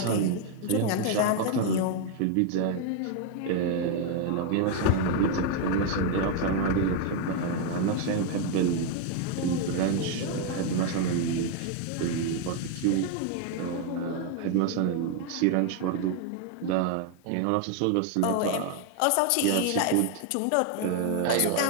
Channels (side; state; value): both; different; correlation 0.01